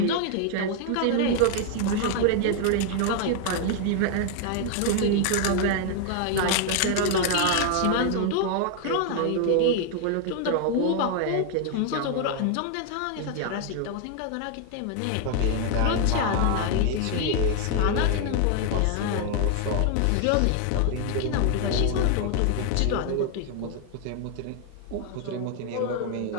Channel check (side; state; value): both; different; correlation 0.00